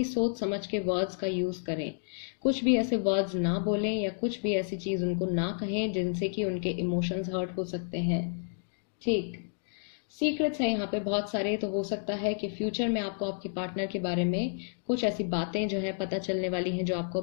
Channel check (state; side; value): silent; right; digital silence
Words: सोच समझ के वर्ड्स का यूज करें। कुछ भी ऐसे वर्ड्स ना बोलें, या कुछ भी ऐसी चीज उनको ना कहें जिनसे कि उनके इमोशंस हर्ट हो सकते हैं। ठीक, सीक्रेट्स हैं यहाँ पे बहुत सारे। तो हो सकता है कि फ्यूचर में आपको आपके पार्टनर के बारे में कुछ ऐसी बातें जो है पता चलने वाली हैं जो आपको